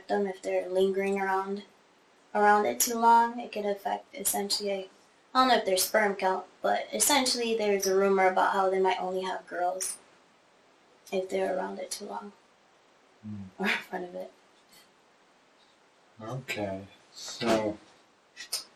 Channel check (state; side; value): identical; both; correlation 1.00